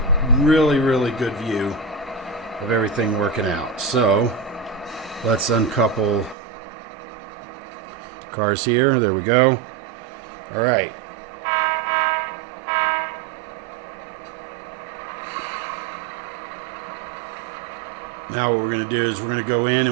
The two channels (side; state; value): left; drops out; at 6.4 s